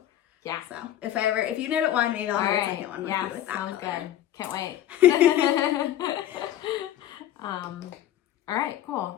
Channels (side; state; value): right; quieter; 12.2 dB